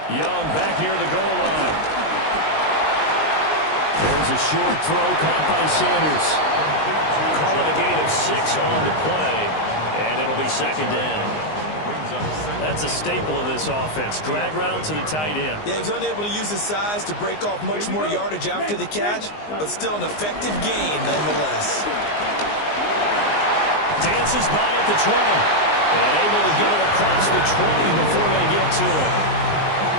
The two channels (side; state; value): right; late; 19 ms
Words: Young back near the goal line. There's a short throw caught by Sanders. Call it a gain of 6 on the play, and it'll be second down. That's a staple of this offense. Drag route to the tight end. Yeah, he was unable to use his size to break off much more yardage after the catch, but still an effective gain nonetheless. Dances by at the 20. And able to get it across the 20 before they get to it.